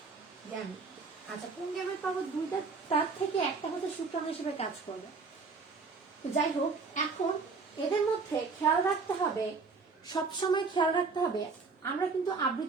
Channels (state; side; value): quieter; left; 4.5 dB